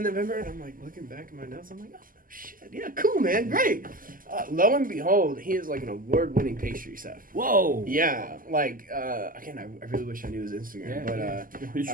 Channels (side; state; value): left; late; 0.41 ms